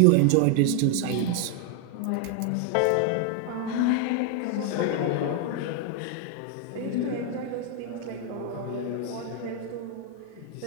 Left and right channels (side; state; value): both; different; correlation 0.00